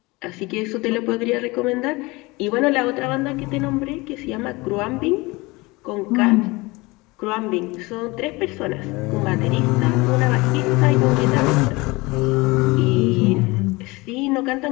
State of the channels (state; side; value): quieter; right; 23.4 dB